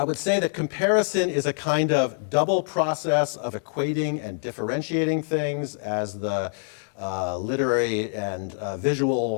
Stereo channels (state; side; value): silent; right; digital silence